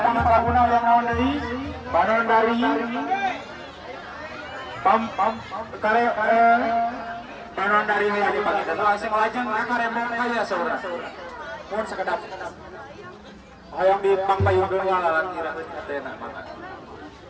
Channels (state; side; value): identical; both; correlation 1.00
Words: laguna yang naon deui? Panandari. Kare Panandari aya di pangita. Langsung lajeng ka Rembang kaya saudara. Mun sakedap. Hayang di pangpayungkeun walalan kira teh mangga.